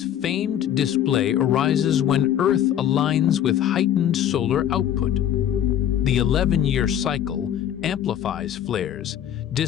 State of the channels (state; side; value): quieter; right; 10.4 dB